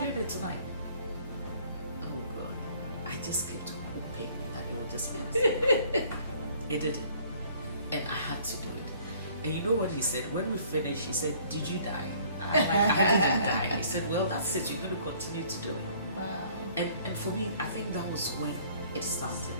it tonight." Oh God. I just kept hoping that it would just be us. It didn't. And I had to do it. And you know what he said? When we finished, he said, "Did you die?" I'm like, "I didn't die." He said, "Well, that's it. You're going to continue to do it." Wow. And for me, I think that was when it started.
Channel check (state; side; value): inverted; both; correlation -0.57